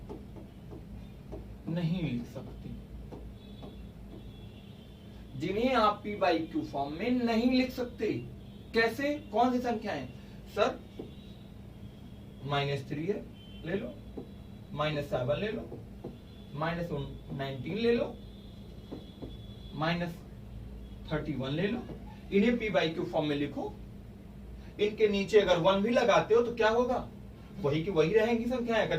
नहीं लिख सकते, जिन्हें आप पी बाई क्यू फॉर्म में नहीं लिख सकते। कैसे? कौन सी संख्याएं? सर -3 है, ले लो, -7 ले लो, -19 ले लो, -31 ले लो। इन्हें पी बाई क्यू फॉर्म में लिखो। इनके नीचे अगर 1 भी लगाते हो तो क्या होगा? वही की वही रहेंगी संख्याएं।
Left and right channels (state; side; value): identical; both; correlation 1.00